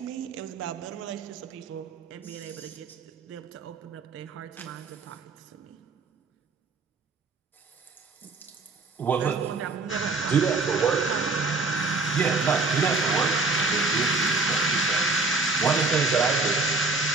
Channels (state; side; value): quieter; left; 3.7 dB